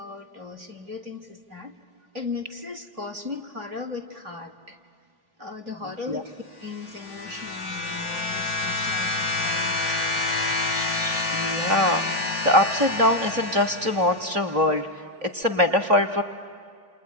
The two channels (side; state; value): left; late; 3.4 ms